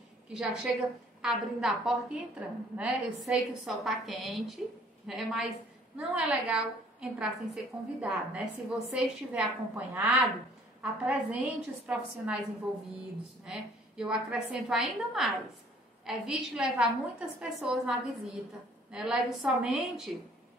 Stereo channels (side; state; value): both; normal; correlation 0.57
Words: que já chega abrindo a porta e entrando, né? Eu sei que o sol está quente, né, mas não é legal entrar sem ser convidado, né? Se você estiver acompanhado, apresente os profissionais envolvidos, né? Eu acrescento ainda mais. Evite levar muitas pessoas na visita, né? Leve somente